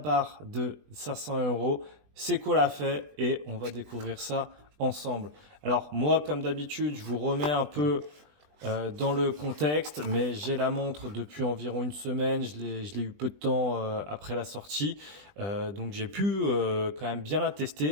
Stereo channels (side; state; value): left; late; 20 ms